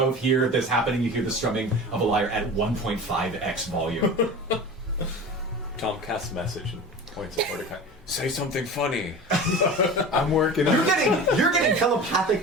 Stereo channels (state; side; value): normal; both; correlation 0.34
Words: hear this happening. You hear the strumming of a lyre at 1.5x volume. Tom casts a message and points at Mordecai. Say something funny. I'm working. You're getting